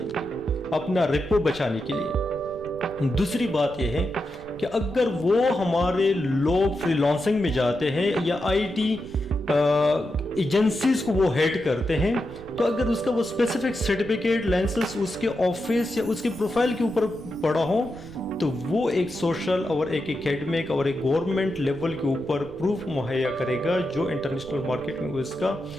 گی اپنا ریپو بچانے کے لیے. دوسری بات یہ ہے کہ اگر وہ ہمارے لوگ فری لانسنگ میں جاتے ہیں یا آئی ٹی ایجنسیز کو وہ ہیڈ کرتے ہیں، تو اگر اس کا وہ اسپیسیفک سرٹیفکیٹ، لائسنس اس کے آفس یا اس کے پروفائل کے اوپر پڑا ہو تو وہ ایک سوشل اور ایک اکیڈمک اور ایک گورنمنٹ لیول کے اوپر پروف مہیا کرے گا جو انٹرنیشنل مارکیٹ میں اس کا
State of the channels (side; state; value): right; noise; rumble, 19 dB below the sound